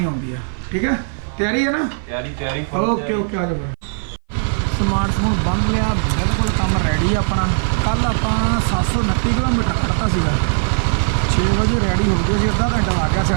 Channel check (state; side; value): silent; left; 58 dB below the other